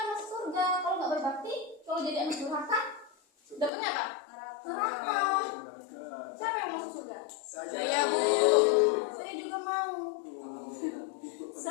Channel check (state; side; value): drops out; right; at 3.7 s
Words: masuk surga. Kalau nggak berbakti, kalau jadi anak durhaka, dapatnya apa? Neraka. Siapa yang masuk surga? Saya Bu. Saya juga mau.